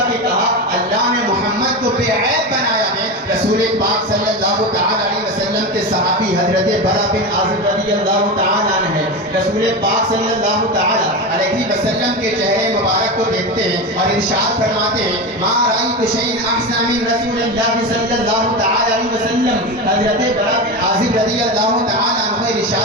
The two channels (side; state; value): both; normal; correlation 0.21